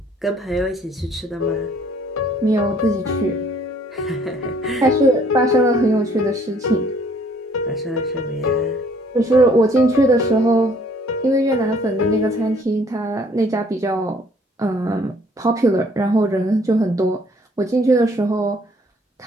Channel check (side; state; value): both; normal; correlation 0.60